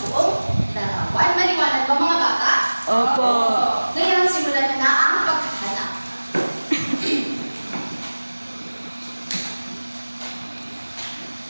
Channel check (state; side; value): inverted; both; correlation -1.00